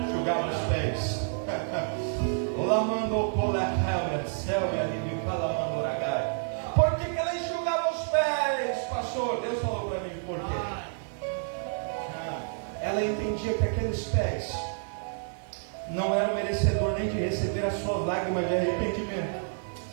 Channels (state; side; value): silent; left; digital silence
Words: Enxugava os pés. Por que ela enxugava os pés, pastor? Deus falou para mim por quê. Ela entendia que aqueles pés não eram merecedor nem de receber as suas lágrimas de arrependimento.